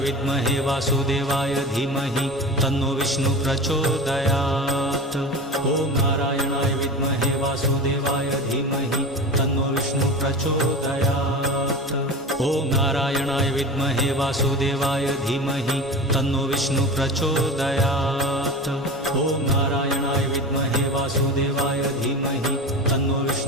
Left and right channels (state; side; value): normal; both; correlation 0.30